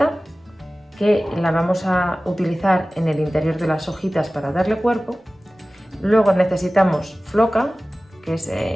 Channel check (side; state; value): both; normal; correlation 0.97